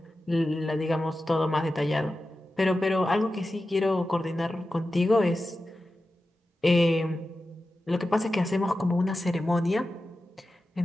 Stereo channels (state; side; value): normal; both; correlation 0.93